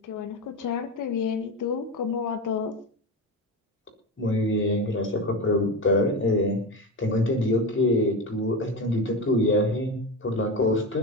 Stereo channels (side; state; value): both; normal; correlation 0.20